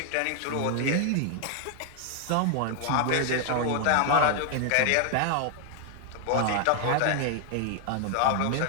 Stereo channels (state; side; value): different; both; correlation 0.00